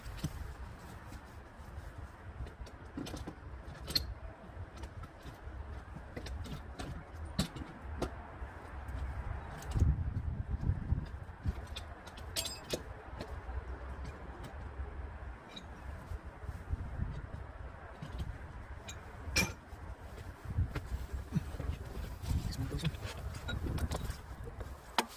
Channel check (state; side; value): identical; both; correlation 1.00